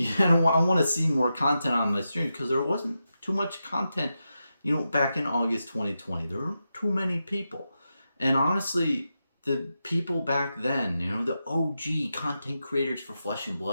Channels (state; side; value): inverted; both; correlation -0.89